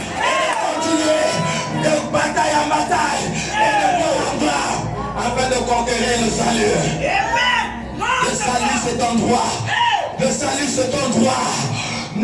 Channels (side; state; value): both; identical; correlation 1.00